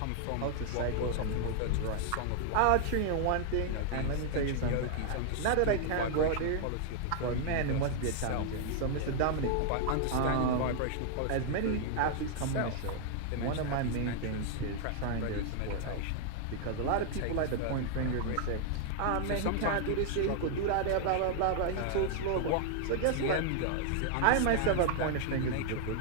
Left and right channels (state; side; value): different; both; correlation -0.01